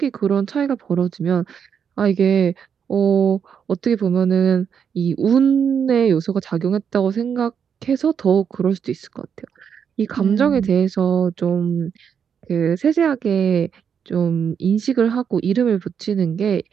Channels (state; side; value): quieter; left; 7.4 dB